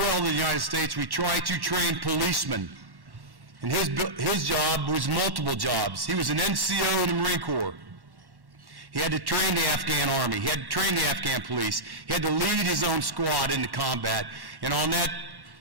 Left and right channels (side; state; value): left; late; 1.1 ms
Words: in the United States, we try to train policemen. And his job was multiple jobs. He was an NCO in the Marine Corps. He had to train the Afghan Army. He had to train the Afghan police. He had to lead his own squad into combat. And on that